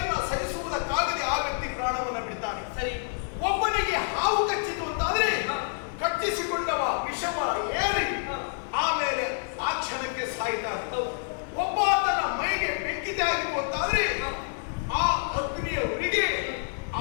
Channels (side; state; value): right; silent; 59 dB below the other